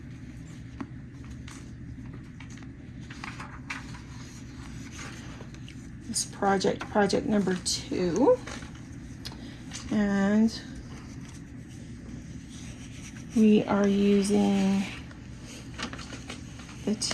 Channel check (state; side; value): identical; both; correlation 1.00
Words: This project number 2. And we are using the